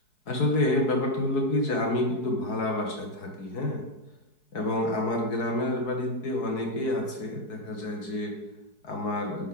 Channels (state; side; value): late; right; 4.7 ms